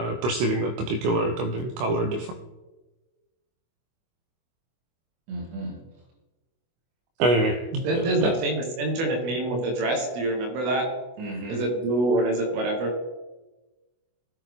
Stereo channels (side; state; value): left; late; 24 ms